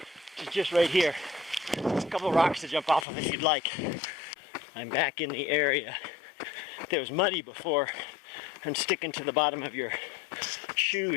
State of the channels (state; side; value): drops out; right; at 3.1 s